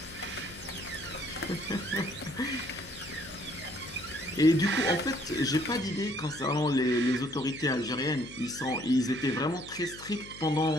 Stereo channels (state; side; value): noise; left; hum, 18 dB below the sound